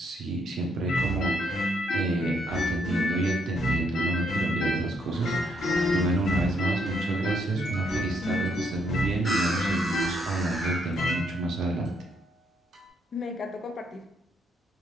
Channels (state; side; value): normal; both; correlation 0.73